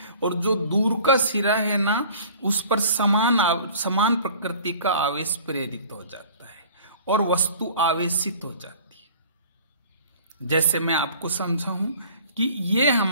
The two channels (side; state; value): both; inverted; correlation -0.47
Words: और जो दूर का सिरा है ना उस पर समान प्रकृति का आवेश प्रेरित हो जाता है और वस्तु आवेशित हो जाती है। जैसे मैं आपको समझाऊं कि ये